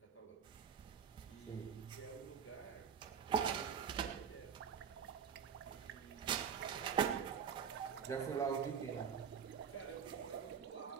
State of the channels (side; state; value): left; quieter; 7.4 dB